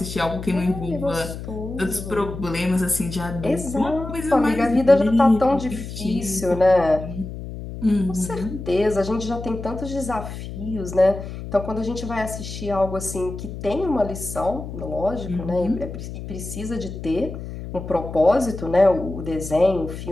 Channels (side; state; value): left; noise; hum, 9 dB below the sound